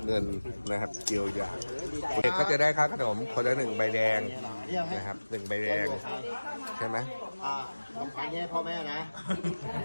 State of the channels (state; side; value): inverted; both; correlation -1.00